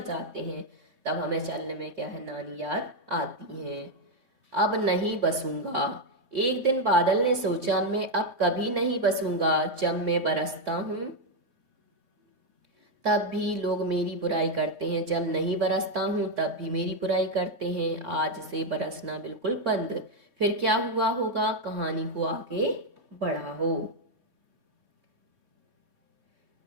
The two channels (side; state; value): left; late; 3.8 ms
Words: जाते हैं। तब हमें चलने में क्या है, नानी याद आती है। अब नहीं बसूंगा, एक दिन बादल ने सोचा मैं अब कभी नहीं बसूंगा। जब मैं बरसता हूँ तब भी लोग मेरी बुराई करते हैं, जब नहीं बरसता हूँ तब भी मेरी बुराई करते हैं। आज से बरसना बिल्कुल बंद, फिर क्या हुआ होगा, कहानी को आगे बढ़ाओ।